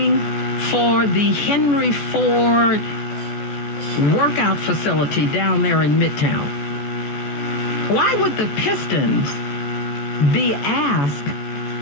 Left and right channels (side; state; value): right; late; 14 ms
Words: for the Henry Ford workout facility down there in Midtown. Why would the Pistons be asked